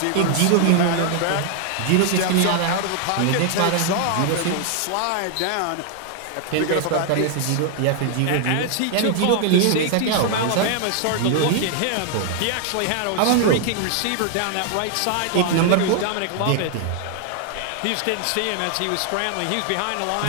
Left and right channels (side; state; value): both; different; correlation 0.00